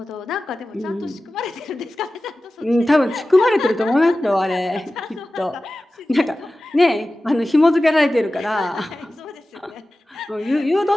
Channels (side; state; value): both; normal; correlation 0.95